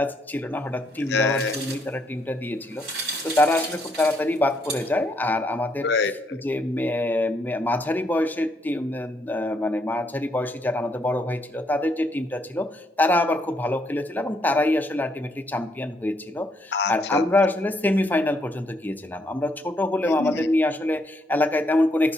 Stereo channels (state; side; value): normal; both; correlation 0.73